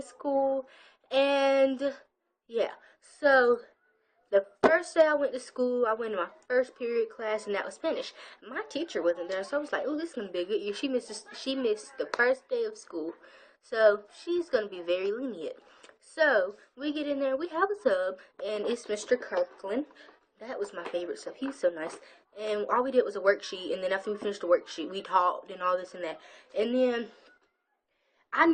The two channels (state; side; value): identical; both; correlation 1.00